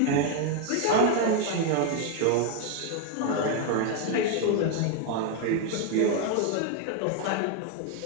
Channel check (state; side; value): different; both; correlation 0.01